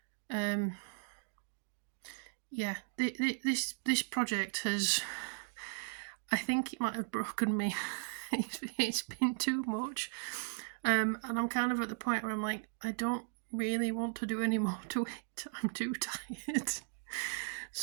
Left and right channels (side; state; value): left; silent; digital silence